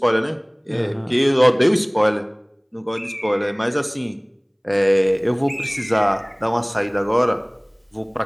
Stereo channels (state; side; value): identical; both; correlation 1.00